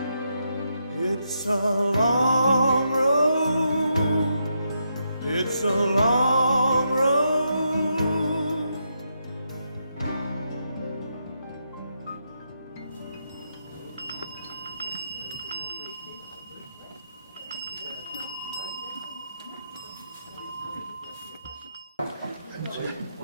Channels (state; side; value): inverted; both; correlation -0.82